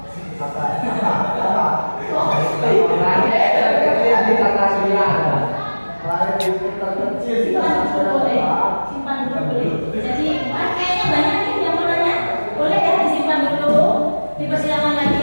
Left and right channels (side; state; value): both; inverted; correlation -1.00